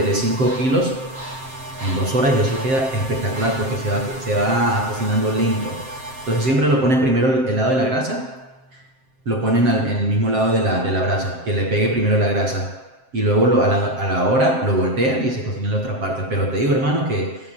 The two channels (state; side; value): late; left; 7.6 ms